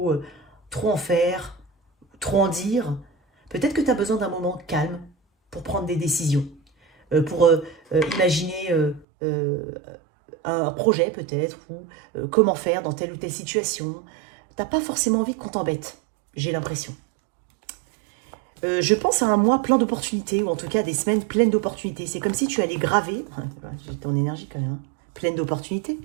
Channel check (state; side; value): drops out; left; at 9.1 s